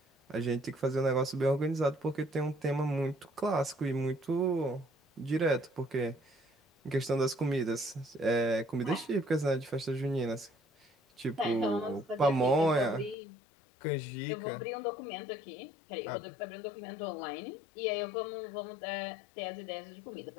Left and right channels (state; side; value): drops out; right; at 13.2 s